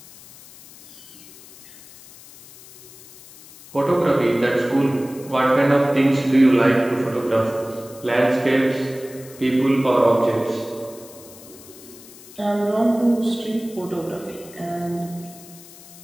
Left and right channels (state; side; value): noise; left; hiss, 20 dB below the sound